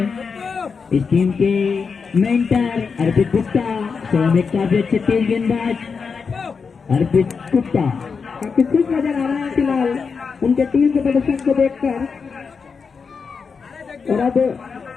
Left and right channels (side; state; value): right; quieter; 5.4 dB